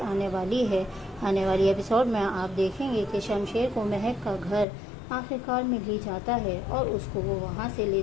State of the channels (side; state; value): right; drops out; at 4.7 s